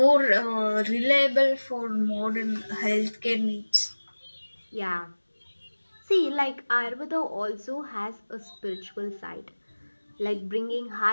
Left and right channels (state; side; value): inverted; both; correlation -1.00